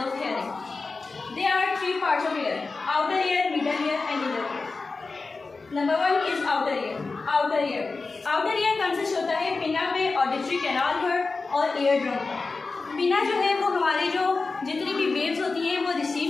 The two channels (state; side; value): quieter; right; 4.0 dB